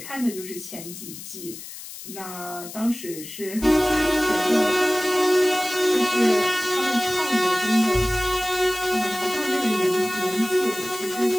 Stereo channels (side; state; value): left; noise; hiss, 13 dB below the sound